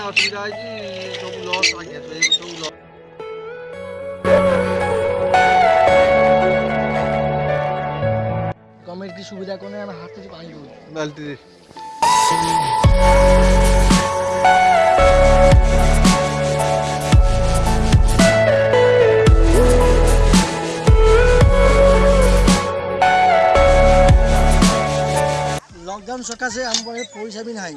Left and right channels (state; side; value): identical; both; correlation 1.00